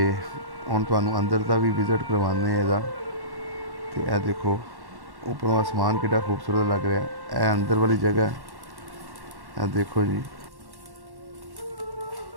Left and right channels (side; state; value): left; late; 1.1 ms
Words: ਹੁਣ ਤੁਹਾਨੂੰ ਅੰਦਰ ਦਾ ਵੀ ਵਿਜ਼ਿਟ ਕਰਵਾਉਂਦੇ ਹਾਂ ਇਹਦਾ। ਤੇ ਇਹ ਦੇਖੋ ਉੱਪਰੋਂ ਆਸਮਾਨ ਕਿੱਡਾ ਖੂਬਸੂਰਤ ਲੱਗ ਰਿਹਾ। ਇਹ ਅੰਦਰ ਵਾਲੀ ਜਗ੍ਹਾ ਹੈ। ਇਹ ਦੇਖੋ ਜੀ